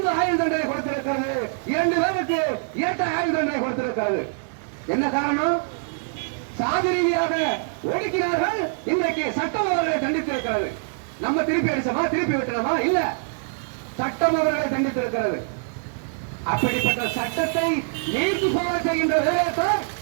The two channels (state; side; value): silent; left; digital silence